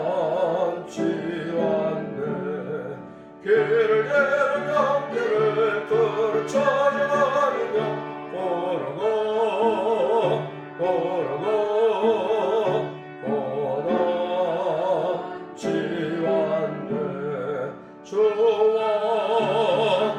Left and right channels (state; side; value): identical; both; correlation 1.00